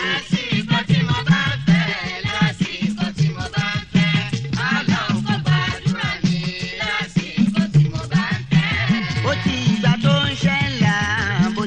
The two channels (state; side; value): identical; both; correlation 1.00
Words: Lásìkò tí mo bá ń fẹ́, lásìkò tí mo bá ń fẹ́, Ọlọ́run kó gbàdúrà mi. Lásìkò tí mo bá ń fẹ́. bó ti ìgbà tó ń ṣe ńlá bó